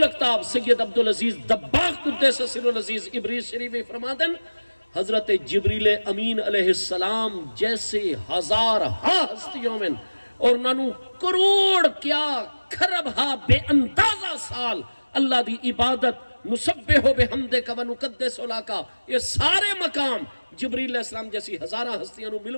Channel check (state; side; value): inverted; both; correlation -1.00